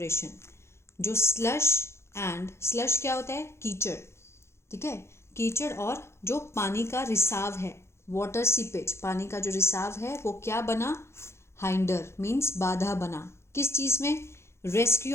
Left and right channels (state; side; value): late; right; 0.13 ms